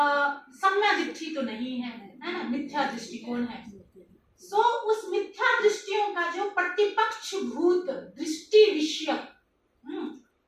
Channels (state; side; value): identical; both; correlation 1.00